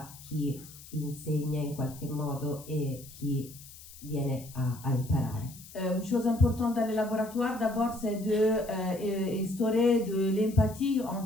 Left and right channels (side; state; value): left; noise; hiss, 18 dB below the sound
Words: chi insegna in qualche modo e chi viene a imparare. Une chose importante dans les laboratoires, d'abord, c'est d'instaurer de l'empathie